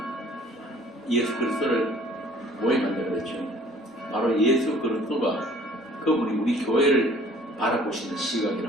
예수 그리스도를 모형한다고 그랬죠. 바로 예수 그리스도가 그분이 우리 교회를 바라보시는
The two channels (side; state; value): both; normal; correlation 0.52